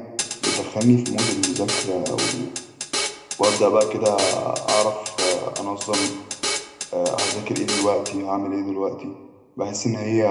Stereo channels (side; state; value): both; identical; correlation 1.00